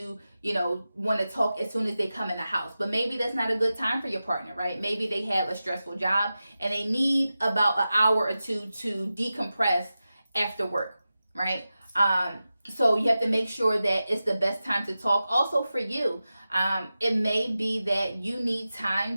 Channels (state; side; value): inverted; both; correlation -0.94